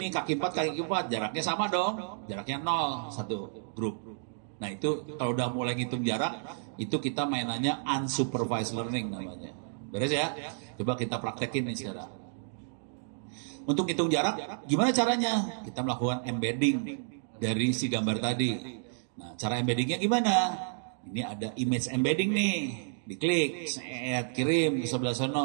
kaki 4, kaki 4, jaraknya sama dong. Jaraknya 0, satu grup. Nah itu kalau udah mulai ngitung jarak, itu kita mainannya unsupervised learning namanya. Beres ya? Coba kita praktekin nih sekarang. Untuk hitung jarak, gimana caranya? Kita melakukan embedding dari si gambar tadi. Nah cara embeddingnya gimana? Ini ada image embedding nih. Diklik, kirim ke sebelah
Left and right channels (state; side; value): silent; left; digital silence